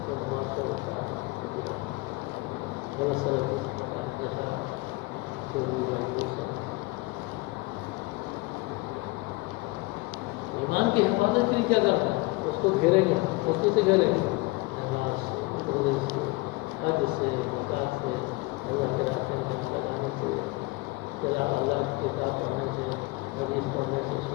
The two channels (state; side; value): quieter; right; 23.4 dB